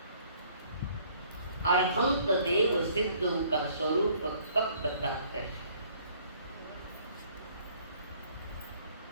अरहंत देव सिद्धों का स्वरूप कब बताते हैं?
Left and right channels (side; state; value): both; inverted; correlation -0.59